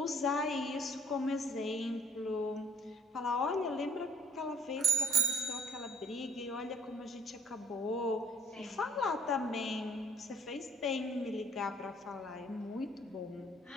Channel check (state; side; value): normal; both; correlation 0.60